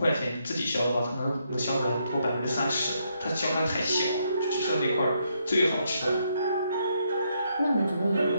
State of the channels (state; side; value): inverted; both; correlation -0.76